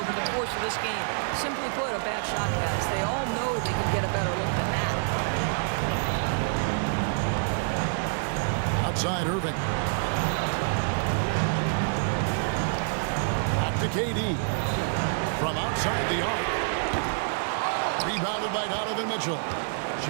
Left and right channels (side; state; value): left; silent; digital silence